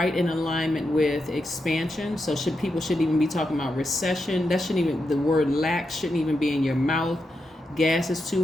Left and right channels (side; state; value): both; normal; correlation 0.86